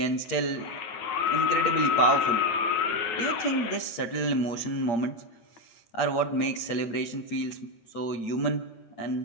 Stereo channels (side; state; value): right; late; 8.6 ms